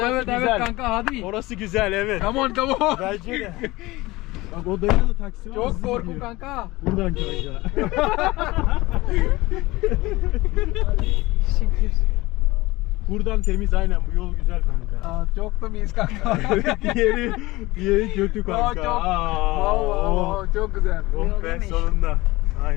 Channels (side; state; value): right; quieter; 20.3 dB